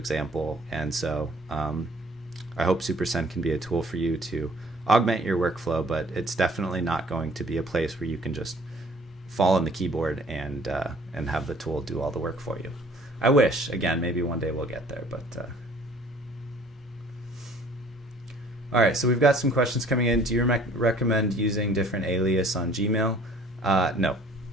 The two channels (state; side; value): normal; both; correlation 0.54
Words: And so I hope SuperSend can be a tool for you to augment your workflow, but it's definitely not going to be a place where you can just fall on the keyboard and have the tool do all the work for you. I wish, again, maybe one day we'll get there, but all right, so we've got some questions coming in. Do you recommend using different alias on Gmail? No.